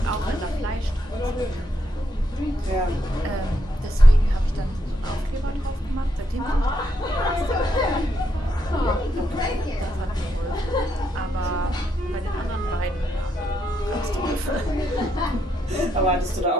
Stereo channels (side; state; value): both; normal; correlation 0.78